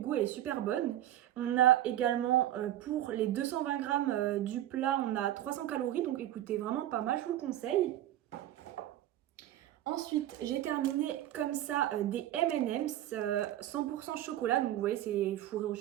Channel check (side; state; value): left; quieter; 13.0 dB